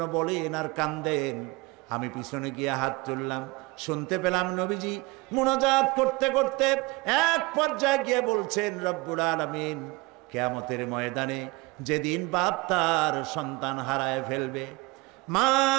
বলেন আর কান্দেন। আমি পিছনে গিয়ে হাত তুললাম, শুনতে পেলাম নবীজি মুনাজাত করতে করতে এক পর্যায়ে গিয়ে বলছেন, রব্বুল আলামিন, কিয়ামতের ময়দানে যেদিন বাপ তার সন্তান হারায় ফেলবে, মা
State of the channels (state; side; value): quieter; left; 24.2 dB